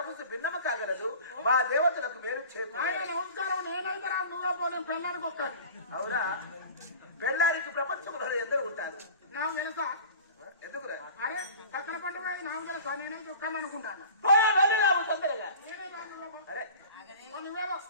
భిన్నమ కాగలదు. మా దేవతలకు మేలు నమస్కారం. నేనైతే నువ్వే పో, నేను పెళ్ళానికి ఒక్కడు. అవునా? పెళ్ళానికి ప్రపంచంలో ఎందరు ఉంటారు. నాకు తెలుసా? ఎందుకురా? అరే పక్కన పంట నాకు తెలుసా? నేనైతే ఒక్కని అనుకుంటాను. వెళ్ళినాము తొందరగా. అరే నువ్వేవో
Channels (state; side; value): inverted; both; correlation -0.40